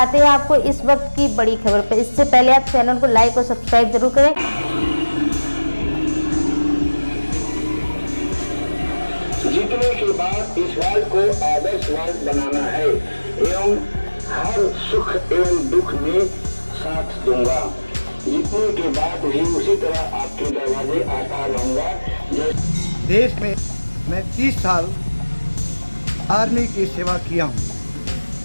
हैं आपको इस वक्त की बड़ी खबर पर। इससे पहले आप चैनल को लाइक और सब्सक्राइब जरूर करें। जीतने के बाद इस वार्ड को आदर्श वार्ड बनाना है एवं हर सुख एवं दुख में साथ दूंगा। जीतने के बाद भी उसी तरह आपके दरवाजे आता रहूंगा। देश में मैं 30 साल आर्मी की सेवा किया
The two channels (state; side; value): inverted; both; correlation -1.00